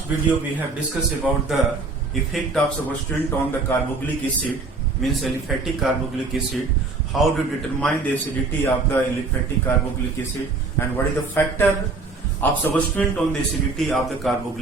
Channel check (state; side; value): quieter; left; 3.9 dB